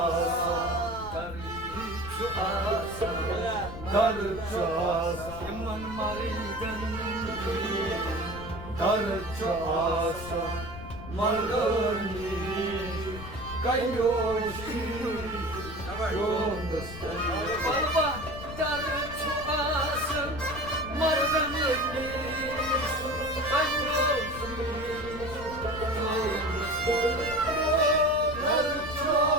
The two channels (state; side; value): noise; left; rumble, 12 dB below the sound